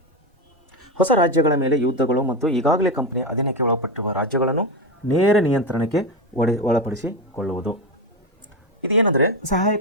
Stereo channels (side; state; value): both; normal; correlation 0.14